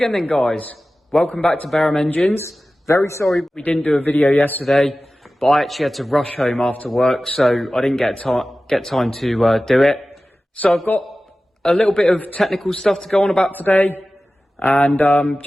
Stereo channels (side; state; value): both; normal; correlation 0.96